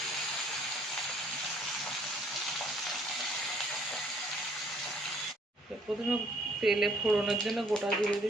প্রথমে তেলে ফোড়নের জন্য গোটা দিয়ে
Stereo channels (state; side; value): normal; both; correlation 0.62